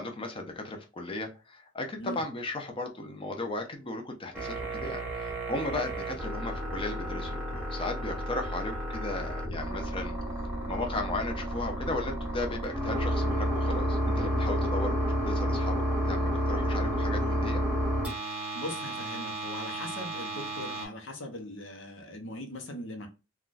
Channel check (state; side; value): normal; both; correlation 0.57